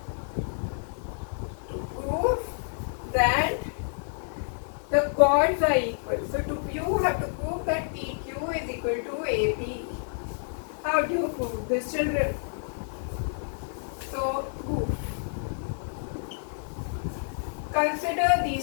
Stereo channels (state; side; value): silent; right; digital silence